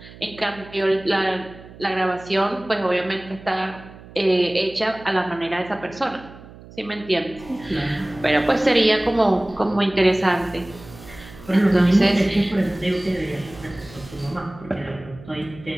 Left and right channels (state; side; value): noise; right; hum, 19 dB below the sound